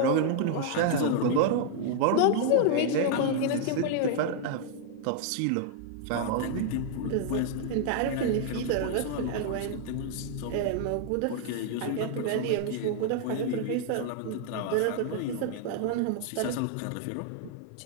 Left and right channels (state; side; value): different; both; correlation 0.00